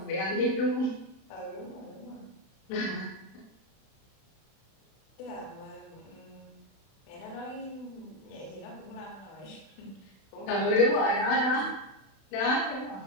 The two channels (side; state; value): right; late; 31 ms